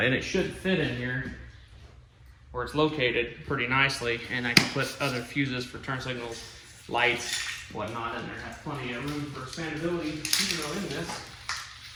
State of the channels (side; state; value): both; identical; correlation 1.00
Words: it should fit in here where it's located pretty nicely, and I can put other fuses for turn signals, lights, whatnot in there. Has plenty of room for expandability, even though in this